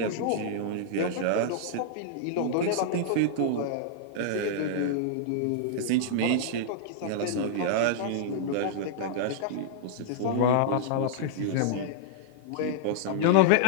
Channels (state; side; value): different; both; correlation -0.02